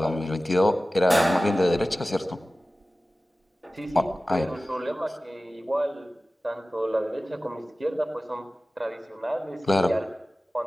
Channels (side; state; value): both; normal; correlation 0.96